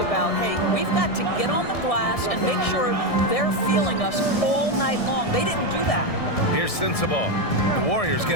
about, hey, we've got to get on the glass and make sure they're feeling us all night long. They didn't do that. Here's Sensabaugh. The Warriors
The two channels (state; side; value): late; right; 1.6 ms